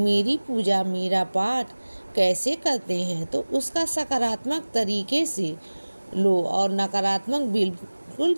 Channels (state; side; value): inverted; both; correlation -1.00